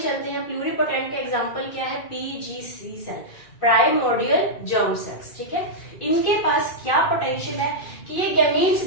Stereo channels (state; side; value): late; right; 2.4 ms